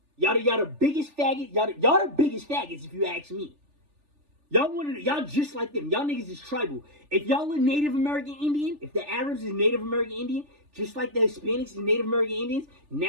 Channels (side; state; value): left; late; 3.4 ms